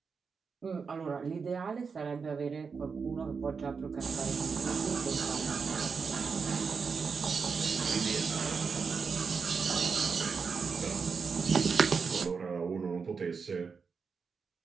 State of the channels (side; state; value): left; quieter; 5.4 dB